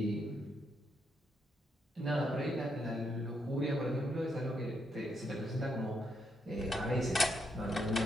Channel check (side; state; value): both; normal; correlation 0.78